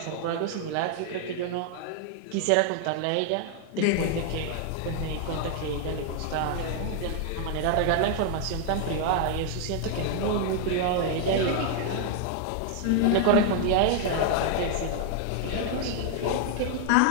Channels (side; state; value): both; different; correlation 0.00